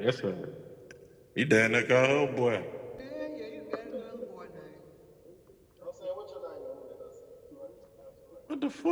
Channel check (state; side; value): identical; both; correlation 1.00